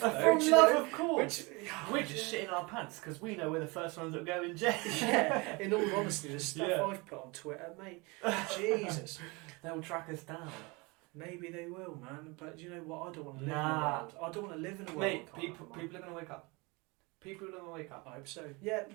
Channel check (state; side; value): quieter; left; 26.6 dB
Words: though. From love, of course. We're just shitting our pants because we know we're the first ones that go in jail. Yeah, in all honesty, the stuff I've put on Twitter, mate, Jesus. They'll track us down. Maybe they will, man. But you know what? I don't want to live in a world. I don't want to live in a world. Mate, people are going to wake up. People are going to wake up. I hope so. Yeah,